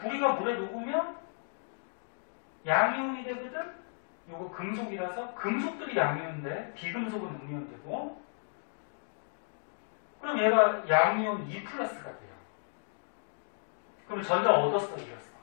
물에 녹으면 양이온이 되거든? 요거 금속이라서 금속들이 양이온인데 비금속은 음이온 되고 그럼 얘가 양이온 2 플러스가 돼요. 그럼 전자 얻었어, 잃었어?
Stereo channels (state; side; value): silent; right; digital silence